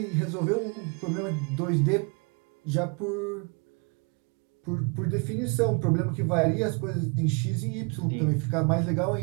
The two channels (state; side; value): quieter; left; 33.9 dB